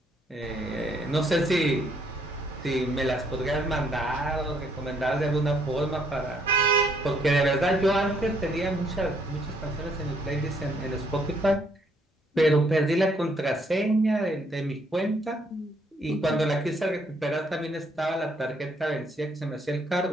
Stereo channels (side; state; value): both; normal; correlation 0.69